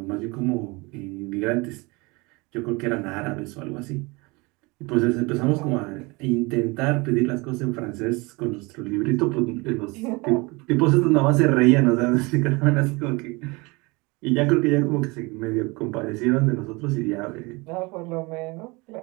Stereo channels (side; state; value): left; quieter; 26.0 dB